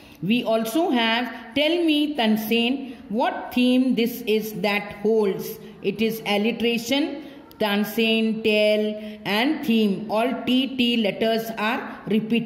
We also have, tell me, Tansen, what theme this is that holds. It is alliteration. Tansen, tell and theme. All T letters are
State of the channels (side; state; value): both; identical; correlation 1.00